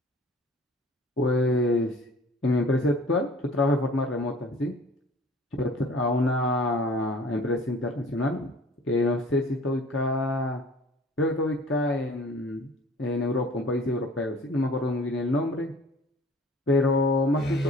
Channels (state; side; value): normal; both; correlation 0.49